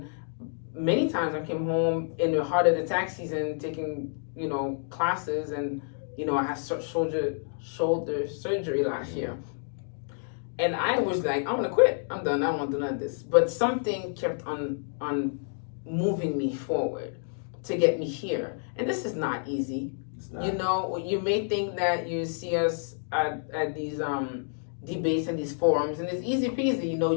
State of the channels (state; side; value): silent; right; digital silence